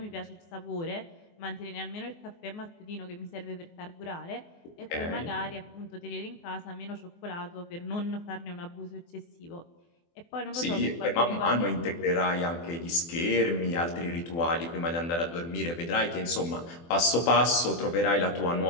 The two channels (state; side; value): late; right; 24 ms